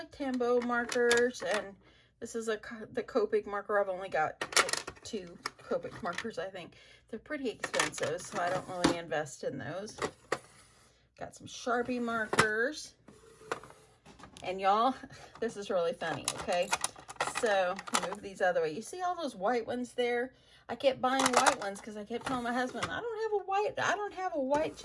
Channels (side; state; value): both; identical; correlation 1.00